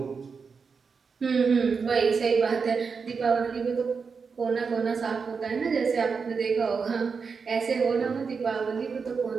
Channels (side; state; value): left; quieter; 5.4 dB